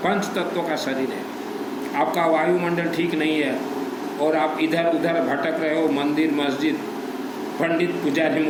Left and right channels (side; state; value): both; identical; correlation 1.00